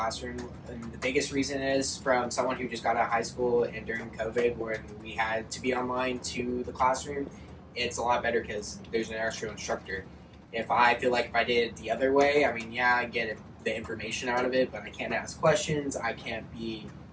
And the biggest reason is from someone who just got out of high school and during COVID when we had to be online to the classroom, it's a lot better because there's an actual instructor. If I feel like if I did it the other way, I mean, yeah, I get the information out of it, but I can't ask questions. I can't be,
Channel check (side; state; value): both; identical; correlation 1.00